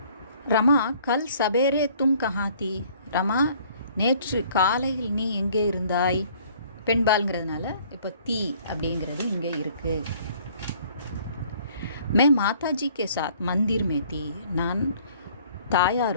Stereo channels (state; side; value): inverted; both; correlation -0.57